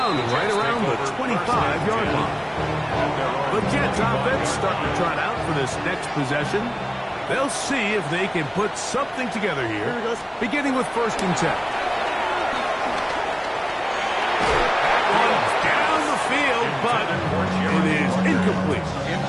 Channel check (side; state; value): both; identical; correlation 1.00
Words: right around the 25-yard line. The Jets offense starting to trot out for this next possession. They'll see if they can put something together here, beginning with 1st and 10. That one's down the field, but it is incomplete.